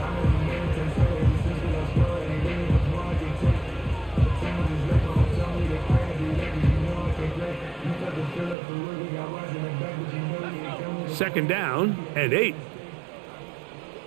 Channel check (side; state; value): left; drops out; at 8.6 s